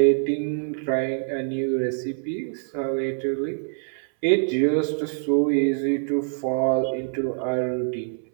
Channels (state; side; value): silent; left; 62 dB below the other